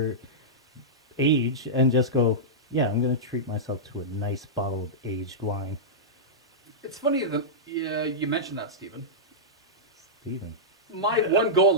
age and just go, yeah, I'm gonna treat myself to a nice bottle of aged wine. It's funny that you mentioned that, Stephen. Steven. My one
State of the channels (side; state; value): both; normal; correlation -0.12